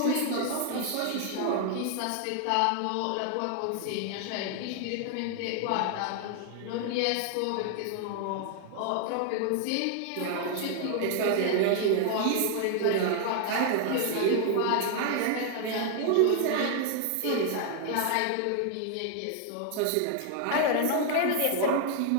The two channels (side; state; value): both; different; correlation 0.00